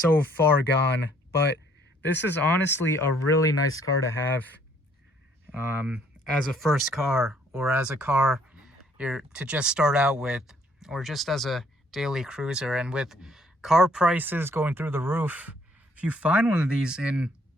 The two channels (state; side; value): normal; both; correlation 0.64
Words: far gone, but this is honestly a really nice car to have. as a first car, or as a car you're to just start out with, or just as a daily cruiser. And with car prices going through the roof, if you find one of these in